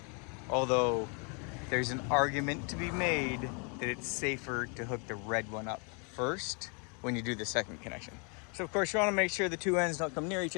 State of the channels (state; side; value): quieter; right; 35.7 dB